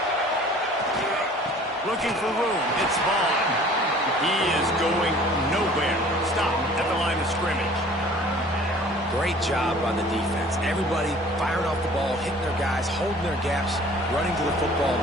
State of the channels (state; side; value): normal; both; correlation 0.50